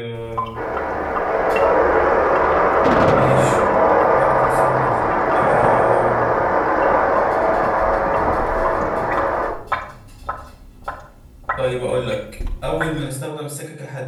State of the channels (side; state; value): both; identical; correlation 1.00